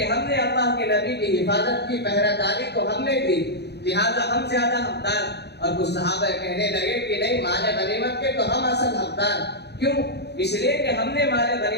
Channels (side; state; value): right; late; 0.48 ms